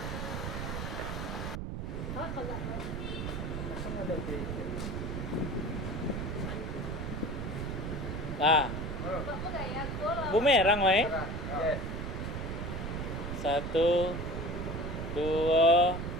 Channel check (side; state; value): right; noise; rumble, 4 dB below the sound